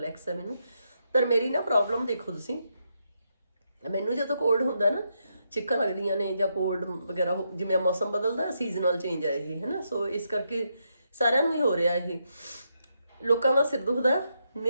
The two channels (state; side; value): inverted; both; correlation -0.81